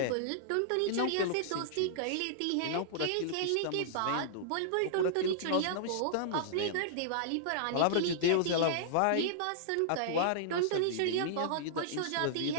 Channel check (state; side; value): different; both; correlation -0.01